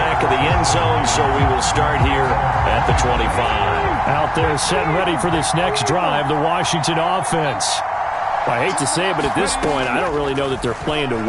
of the end zone, so we will start here at the 25. Out there set and ready for this next drive, the Washington offense. I hate to say it, but at this point, I don't really know that they're playing to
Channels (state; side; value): identical; both; correlation 1.00